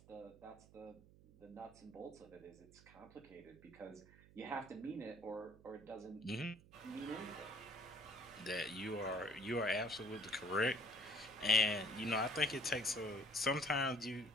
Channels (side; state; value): right; noise; hum, 22 dB below the sound